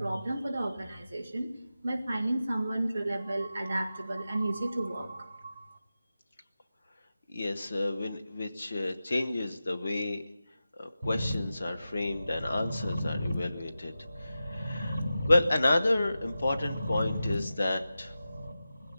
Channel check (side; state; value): both; inverted; correlation -0.92